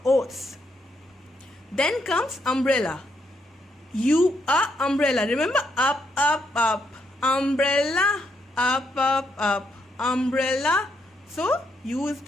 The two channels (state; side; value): normal; both; correlation 0.77